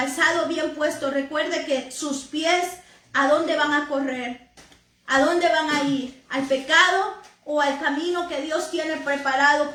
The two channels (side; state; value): both; identical; correlation 1.00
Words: bien puesto. Recuerde que sus pies, ¿a dónde van a correr? ¿A dónde van a ir? ¿Al pecado o al camino que Dios tiene preparado